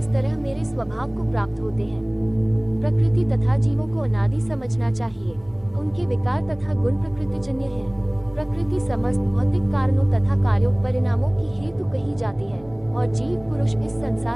तरह मेरे स्वभाव को प्राप्त होते हैं। प्रकृति तथा जीवों को अनादि समझना चाहिए। उनके विकार तथा गुण प्रकृतिजन्य हैं। प्रकृति समस्त भौतिक कारणों तथा कार्यों, परिणामों की हेतु कही जाती है और जीव पुरुष इस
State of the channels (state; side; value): noise; right; rumble, 24 dB below the sound